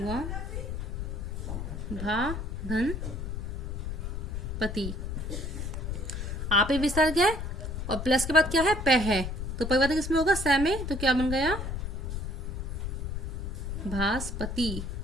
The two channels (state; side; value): noise; left; rumble, 4 dB below the sound